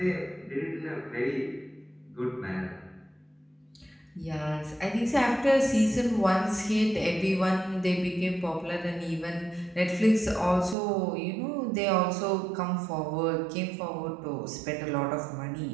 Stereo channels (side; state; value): left; drops out; at 10.8 s